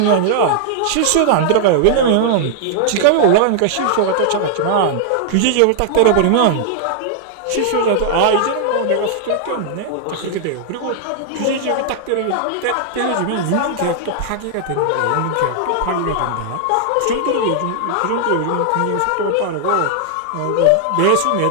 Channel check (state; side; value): different; both; correlation -0.01